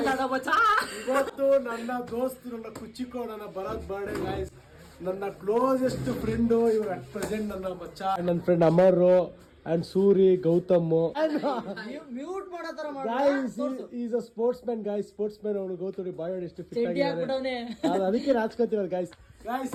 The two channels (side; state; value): both; identical; correlation 1.00